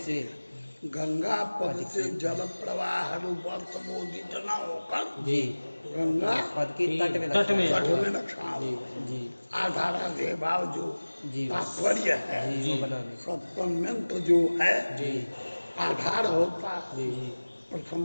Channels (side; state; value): both; inverted; correlation -1.00